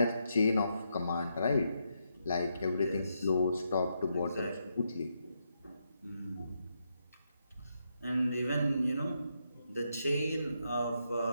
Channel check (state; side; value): inverted; both; correlation -0.81